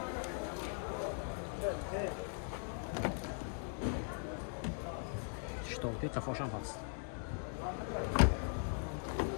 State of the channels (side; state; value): right; silent; 51 dB below the other